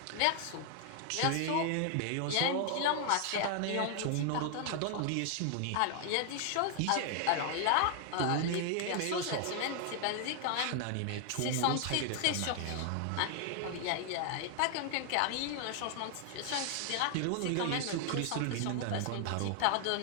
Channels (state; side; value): different; both; correlation 0.00